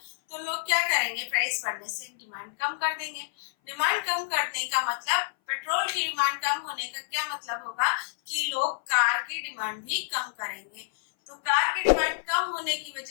तो लोग क्या करेंगे, प्राइस बढ़ने से डिमांड कम कर देंगे। डिमांड कम करने का मतलब, पेट्रोल की डिमांड कम होने का क्या मतलब होगा कि लोग कार की डिमांड भी कम करेंगे। तो कार की डिमांड कम होने की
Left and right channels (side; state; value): right; silent; 57 dB below the other